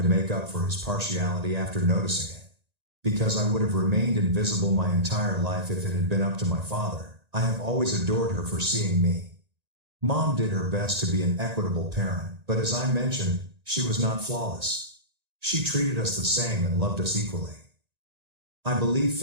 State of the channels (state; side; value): late; left; 1.8 ms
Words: to make up for his partiality after noticing it. because I would have remained invisible my entire life if it had been up to my father. I have always adored her for seeing me. Mom did her best to be an equitable parent, but as I mentioned, she was not flawless. She treated us the same and loved us equally. I believe